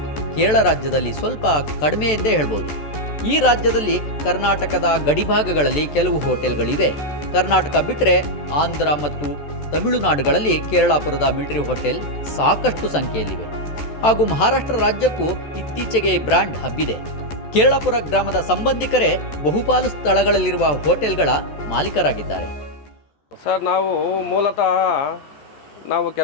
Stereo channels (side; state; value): right; late; 14 ms